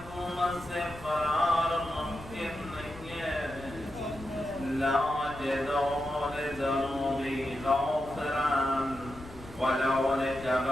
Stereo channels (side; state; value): left; noise; rumble, 17 dB below the sound